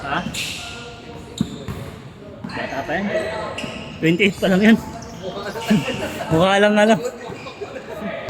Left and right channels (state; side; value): identical; both; correlation 1.00